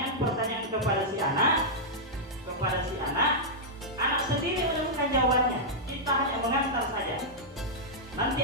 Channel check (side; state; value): both; normal; correlation -0.08